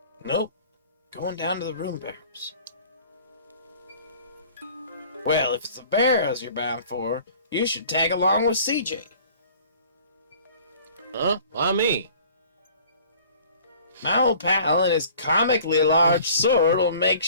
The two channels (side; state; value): both; inverted; correlation -0.49